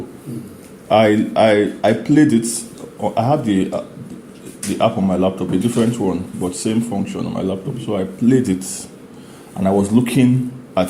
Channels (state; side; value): identical; both; correlation 1.00